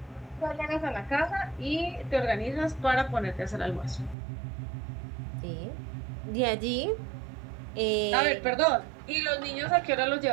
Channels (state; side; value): drops out; left; at 4.2 s